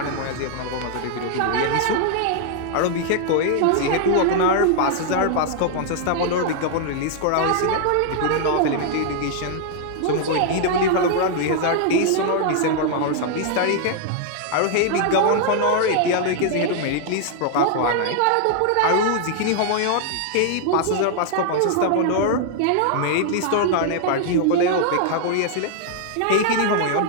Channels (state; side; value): different; both; correlation 0.00